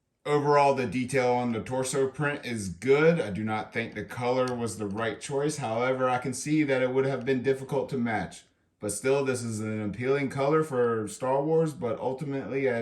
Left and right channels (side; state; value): both; identical; correlation 1.00